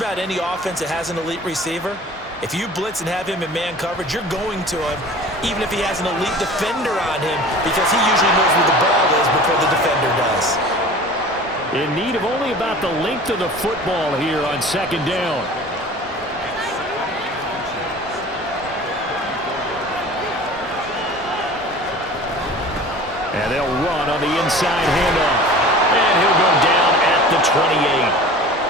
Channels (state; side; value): normal; both; correlation 0.42